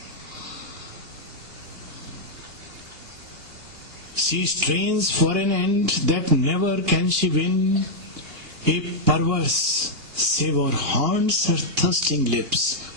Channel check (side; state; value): left; late; 2.8 ms